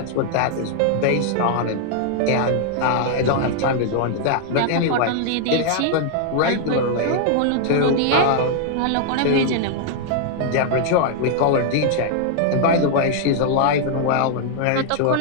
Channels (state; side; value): different; both; correlation 0.00